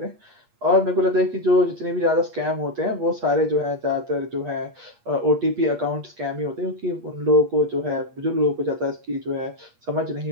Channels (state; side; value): late; left; 8.5 ms